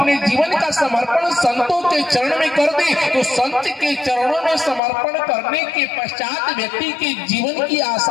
जीवन का समर्पण संतों के चरण में कर दे, तो संत के चरणों में समर्पण करने के पश्चात व्यक्ति के जीवन की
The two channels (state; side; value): drops out; right; at 4.8 s